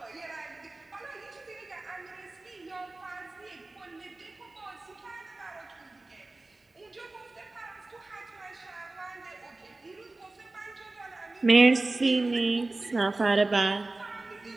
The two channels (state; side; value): quieter; left; 3.1 dB